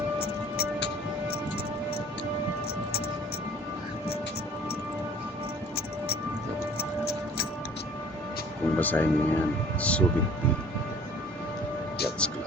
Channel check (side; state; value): both; normal; correlation 0.51